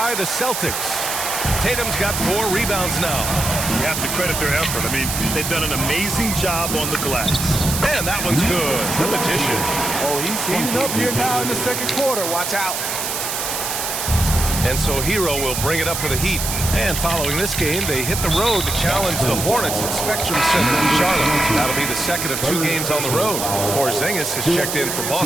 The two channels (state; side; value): noise; right; hiss, 3 dB below the sound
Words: the Celtics. Tatum's got 4 rebounds now. You have to credit their effort. I mean, they've done an amazing job on the glass. And that one's good. The Magician. Oh, he's heating up here now in the second quarter. Watch out. And so Hero will bring it up for the Heat. And following this game, they hit the road to challenge the Hornets at Spectrum Center in Charlotte. That'll be the second of 2 games on the road. Porzingis has checked in for